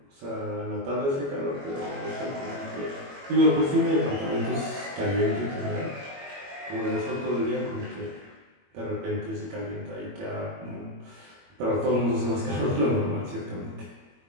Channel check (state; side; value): late; left; 21 ms